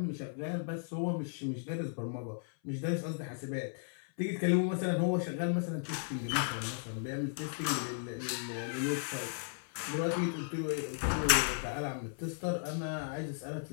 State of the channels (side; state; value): right; silent; 54 dB below the other